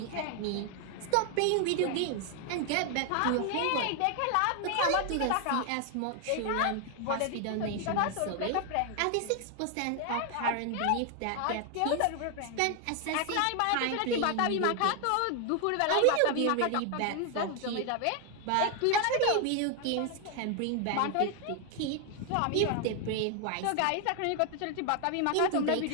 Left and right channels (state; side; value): different; both; correlation 0.00